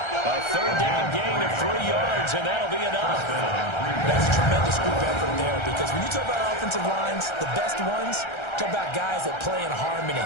3rd down gain of 3 yards, and that'll be enough. That's a tremendous group effort there because when you talk about offensive lines, the best ones, talk about guys that play in harmony,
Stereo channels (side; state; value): right; late; 1.3 ms